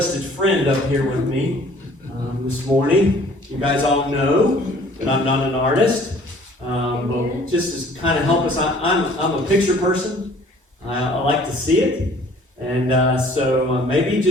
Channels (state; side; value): normal; both; correlation 0.54